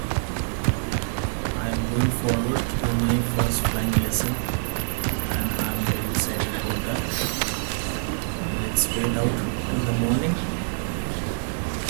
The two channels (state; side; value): silent; left; digital silence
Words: I am going forward to my first flying lesson, and I'm very excited about that. Let's wait out till the morning.